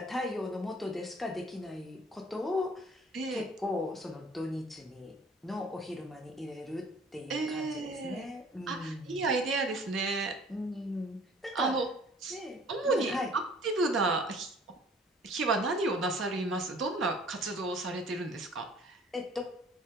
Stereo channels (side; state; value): both; normal; correlation 0.52